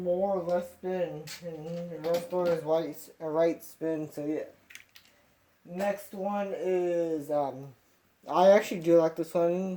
more left spin, and the rest one is right spin. So yeah. Next one is I actually do like this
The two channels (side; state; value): both; identical; correlation 1.00